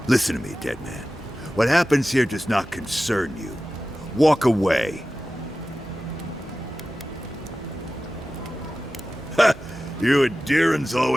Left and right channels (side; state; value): both; normal; correlation 0.95